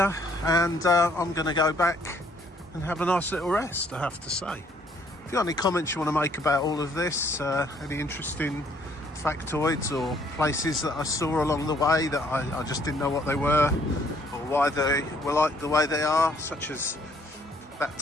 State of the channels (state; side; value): normal; both; correlation 0.65